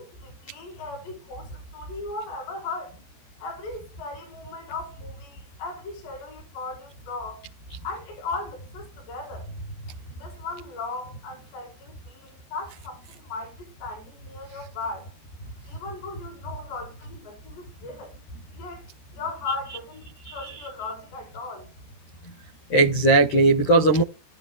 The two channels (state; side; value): late; right; 13 ms